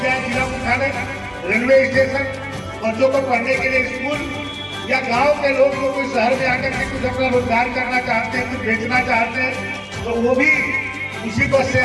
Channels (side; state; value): both; identical; correlation 1.00